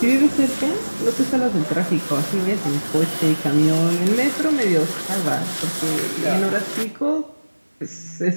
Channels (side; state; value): both; inverted; correlation -1.00